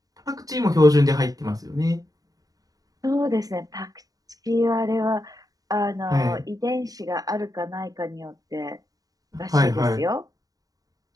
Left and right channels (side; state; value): left; late; 0.18 ms